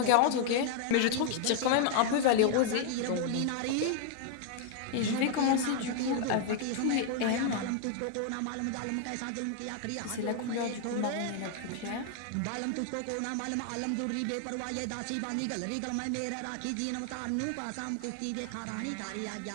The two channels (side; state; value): both; different; correlation 0.00